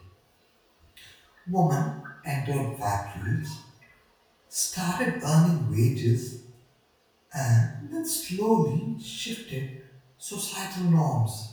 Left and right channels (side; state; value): both; identical; correlation 1.00